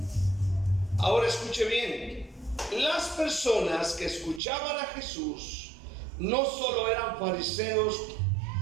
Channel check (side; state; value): left; drops out; at 4.4 s